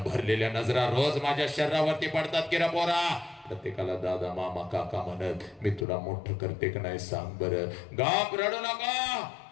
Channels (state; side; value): drops out; right; at 5.9 s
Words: भरलेल्या नजरा रोज माझ्या शरीरावरती पडतात की रे पोरा. प्रत्येकाला दादा मामा काका म्हणत मी तुला मोठं करते का नाही सांग बरं. गाप रडू नका.